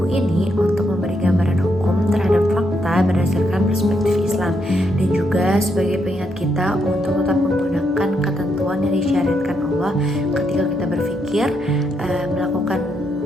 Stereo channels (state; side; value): normal; both; correlation 0.78